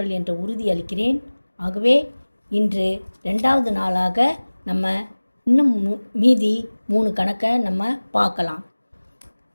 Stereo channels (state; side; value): inverted; both; correlation -1.00